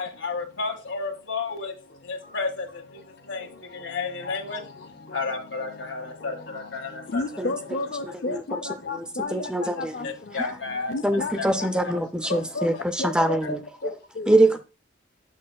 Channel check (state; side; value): normal; both; correlation 0.50